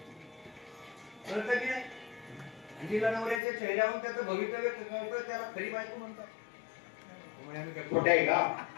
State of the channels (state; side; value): drops out; right; at 3.4 s